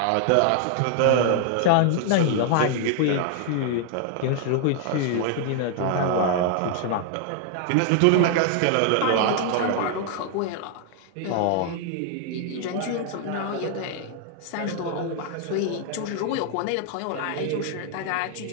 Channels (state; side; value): different; both; correlation 0.00